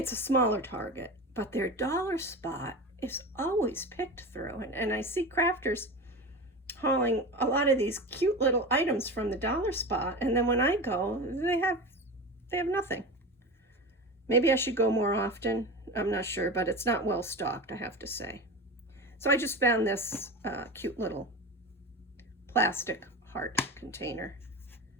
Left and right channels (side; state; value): both; normal; correlation 0.27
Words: a smaller Target, but their dollar spot is always picked through. And I see crafters hauling a lot of these cute little items from the dollar spot, and then when I go, they have nothing. Maybe I should go more often. I'm not sure, but it's not well stocked, I have to say. So I just found this cute little plastic heart container.